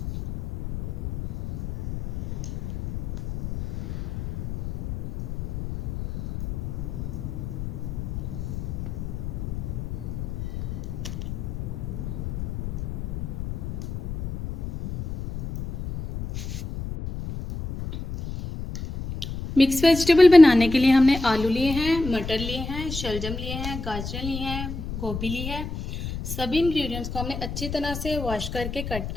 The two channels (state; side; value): noise; left; rumble, 6 dB below the sound